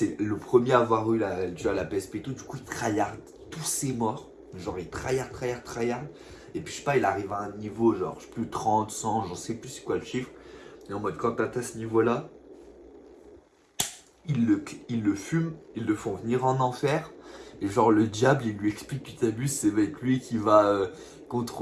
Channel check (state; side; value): identical; both; correlation 1.00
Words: le premier à avoir eu tu vois, la PSP et tout. Du coup, il tryhard tous ses morts. Genre, il tryhard. Et puis, je sais pas, il arrive à un niveau, genre, je sais plus, 30, 100, j'en sais plus c'est quoi le chiffre. Et en mode, quand t'as ce niveau-là, ils le fument, ils le font venir en enfer. Et genre le diable, il lui explique que t'abuses, c'est avec lui qui va